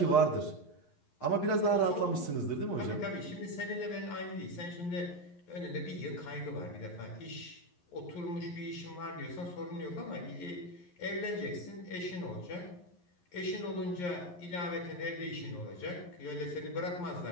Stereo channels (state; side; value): late; right; 11 ms